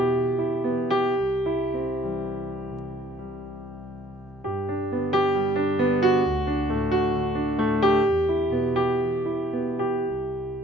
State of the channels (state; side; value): normal; both; correlation 0.60